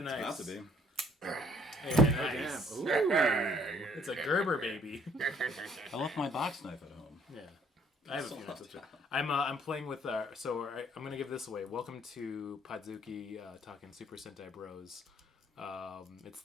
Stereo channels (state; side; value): normal; both; correlation 0.61